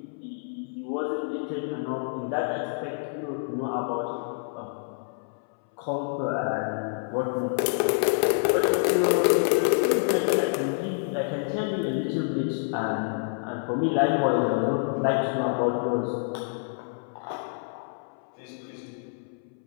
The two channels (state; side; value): silent; right; 60 dB below the other